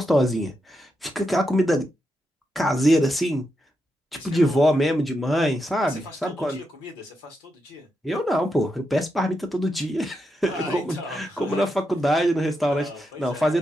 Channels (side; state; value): both; normal; correlation 0.85